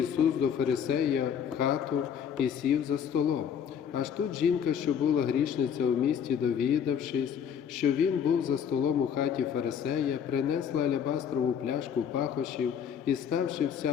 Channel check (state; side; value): quieter; right; 8.0 dB